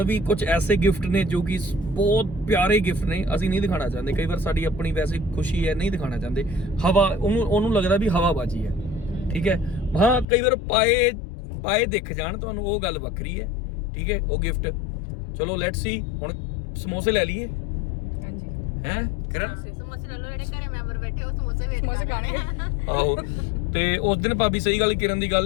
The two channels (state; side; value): drops out; right; at 10.2 s